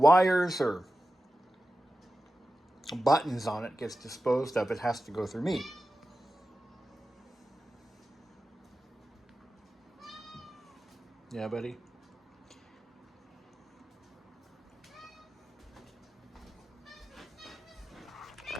or buttons on it gets disposed of, it has to go through me. Yeah, buddy?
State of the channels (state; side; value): normal; both; correlation 0.93